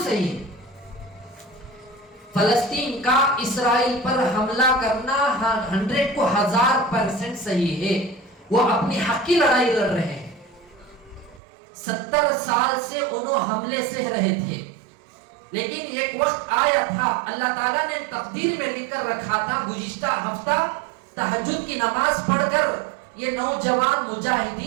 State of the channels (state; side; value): drops out; left; at 11.4 s